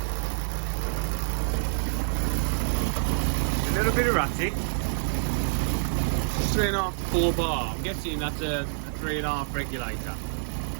A little bit erratic. 3.5 to 4 bar. I'm guessing that's a 3.5 regulator.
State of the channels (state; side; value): silent; left; digital silence